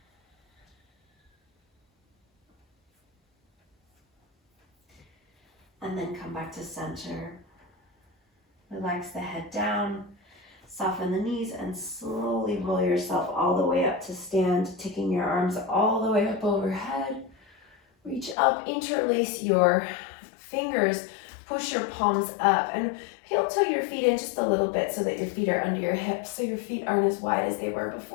And then come back to center. Relax the head down, soften the knees, and slowly roll yourself all the way up to stand, taking your arms all the way up overhead. Reach up, interlace your fingers, push your palms up, and heel toe your feet in just a little bit so that your feet are under your hips, so your feet aren't as wide as they were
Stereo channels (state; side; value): drops out; right; at 18.4 s